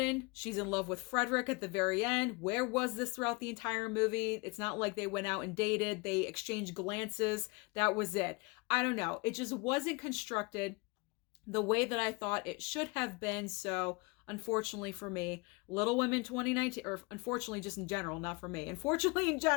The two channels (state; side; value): quieter; right; 27.8 dB